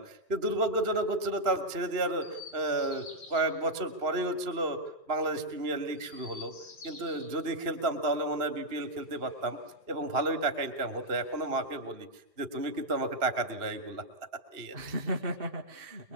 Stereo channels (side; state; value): left; late; 2.9 ms